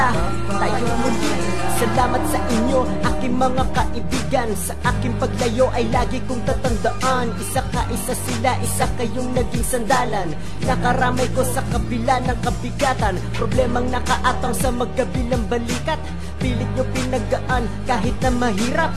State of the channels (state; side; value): identical; both; correlation 1.00